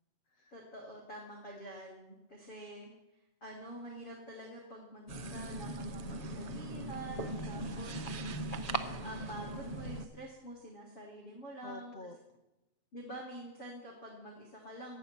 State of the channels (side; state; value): right; late; 7.3 ms